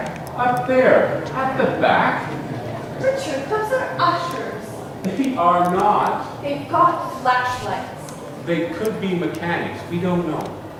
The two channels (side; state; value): both; identical; correlation 1.00